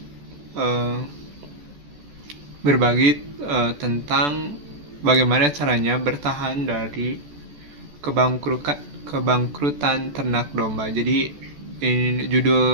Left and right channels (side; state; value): left; late; 14 ms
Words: eh, berbagi tentang bagaimana caranya bertahan dari kebangkrutan ternak domba. Jadi